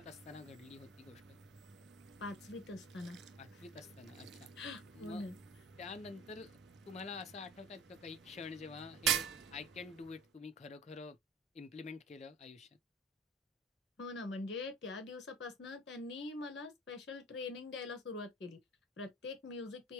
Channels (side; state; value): both; normal; correlation 0.40